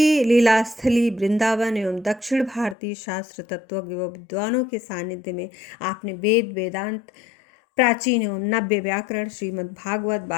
लीला स्थली वृंदावन एवं दक्षिण भारतीय शास्त्र तत्वज्ञ व विद्वानों के सानिध्य में आपने वेद, वेदांत, प्राचीन एवं नव्य व्याकरण, श्रीमद् भागवत,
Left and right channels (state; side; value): drops out; right; at 2.8 s